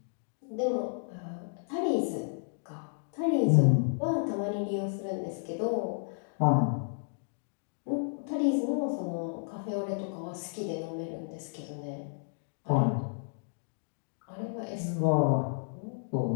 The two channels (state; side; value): silent; right; digital silence